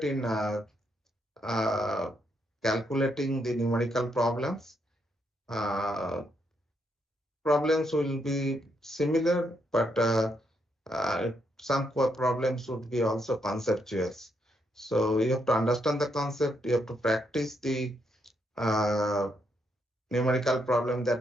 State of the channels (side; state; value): both; normal; correlation 0.77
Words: in uh, calculating the numerical problems. Problems will be similar, but some problems would be also conceptual. So you have to understand the concept, you have to practice the uh, numerical problem